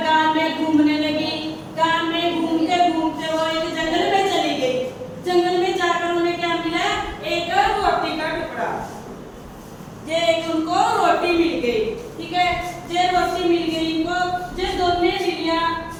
गांव में घूमने लगी। गांव में घूमते घूमते वो एक जंगल में चली गई। जंगल में जाकर उन्हें क्या मिला? एक रोटी का टुकड़ा। जे एक उनको रोटी मिल गई, ठीक है। जे रोटी मिल गई इनको, जे दोनों बिल्लियां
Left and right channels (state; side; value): identical; both; correlation 1.00